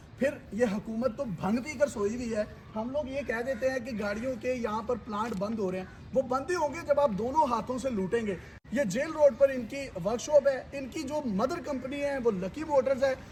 फिर ये हुकूमत तो भंग पी कर सोई हुई है। हम लोग ये कह देते हैं कि गाड़ियों के यहाँ पर प्लांट बंद हो रहे हैं, वो बंद ही होंगे जब आप दोनों हाथों से लूटेंगे। ये जेल रोड पर इनकी वर्कशॉप है। इनकी जो मदर कंपनी है वो लकी मोटर्स है,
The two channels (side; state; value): both; identical; correlation 1.00